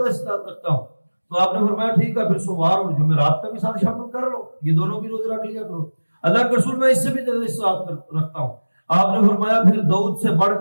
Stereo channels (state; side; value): inverted; both; correlation -1.00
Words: استطاعت رکھتا ہوں. تو آپ نے فرمایا ٹھیک ہے پھر سوموار اور جمعرات کا بھی ساتھ شامل کر لو، یہ دونوں بھی روزے رکھ لیا کرو. اللہ کے رسول میں اس سے بھی زیادہ استطاعت رکھتا ہوں. آپ نے فرمایا پھر داؤد سے بڑھ